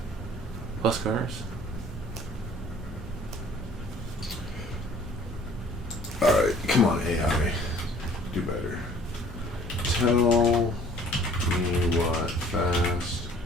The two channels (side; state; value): both; normal; correlation 0.53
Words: Plus cars? Alright, come on, AI. Do better. Tell me what Fast